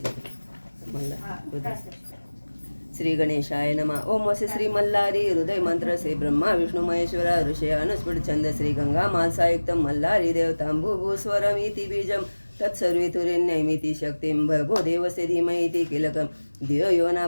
मल्हार. श्री गणेशाय नमः. ओम वसे श्री मल्हारी हृदय मंत्र से ब्रह्मा विष्णु महेश्वरा ऋषय अनुस्फुट छंद श्री गंगा मानसायुक्त मल्हारी देवतांबुभू स्वरमिति बीजम तत्सर्वेतुरेण्यमिति शक्तिं भर्गो देवस्य धीमहि किलकं धियो यो न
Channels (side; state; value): both; inverted; correlation -1.00